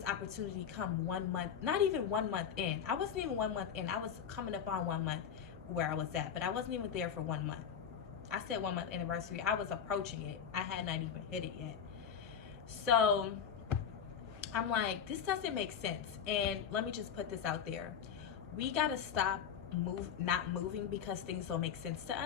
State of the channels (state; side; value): quieter; right; 7.8 dB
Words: opportunity come 1 month, not even 1 month in. I wasn't even 1 month in. I was coming up on 1 month where I was at, but I wasn't even there for 1 month. I said 1 month anniversary. I was approaching it. I had not even hit it yet. So I'm like, this doesn't make sense. And let me just put this out there. We got to stop not moving because things don't make sense to